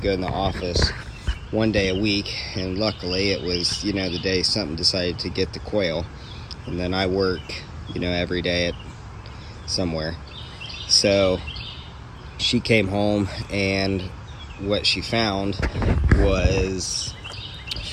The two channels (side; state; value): both; identical; correlation 1.00